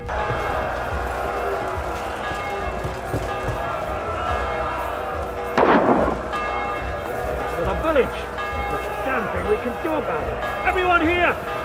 The village! There's a damn thing we can do about it! Everyone here!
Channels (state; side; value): identical; both; correlation 1.00